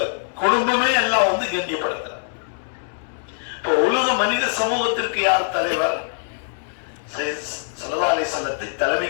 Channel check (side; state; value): right; silent; digital silence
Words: குடும்பமே எல்லாம் வந்து கண்ணியப்படுத்துறாங்க. இப்போ உலக மனித சமூகத்திற்கு யார் தலைவர்? ஸல்லல்லாஹு அலைஹி அலைஹிஸ்ஸலாத்தை